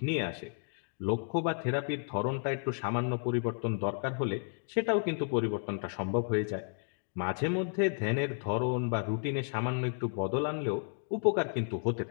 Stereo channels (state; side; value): silent; right; digital silence